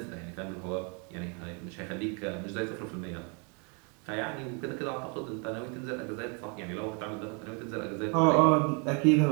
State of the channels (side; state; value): left; quieter; 35.3 dB